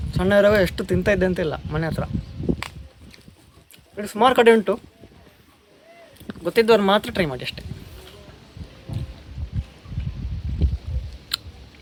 ಸಣ್ಣ ಇರುವಾಗ ಎಷ್ಟು ತಿಂತಾ ಇದ್ದೆ ಅಂತಿಲ್ಲ ಮನೆ ಹತ್ರ. ಇದು ಸುಮಾರು ಕಡೆ ಉಂಟು, ಗೊತ್ತಿದ್ದವ್ರು ಮಾತ್ರ ಟ್ರೈ ಮಾಡಿ ಅಷ್ಟೇ.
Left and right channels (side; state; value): both; identical; correlation 1.00